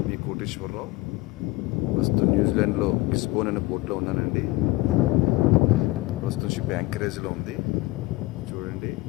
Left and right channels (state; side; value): quieter; right; 20.1 dB